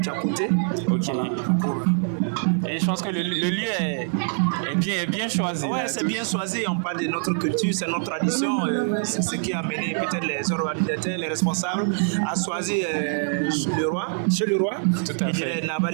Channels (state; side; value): silent; left; 62 dB below the other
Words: à côté. Ok. Et je pense que le lieu est bien choisi. Ouais, c'est bien choisi. On parle de notre culture, c'est notre tradition. C'est ce qui a amené peut-être les organisateurs, les responsables à choisir chez le roi. Tout à fait. Et Naba